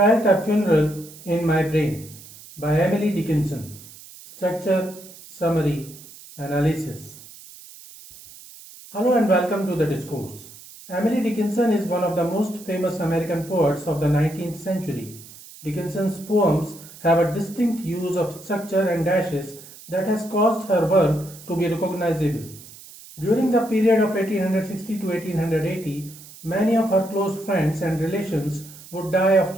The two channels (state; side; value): noise; right; hiss, 19 dB below the sound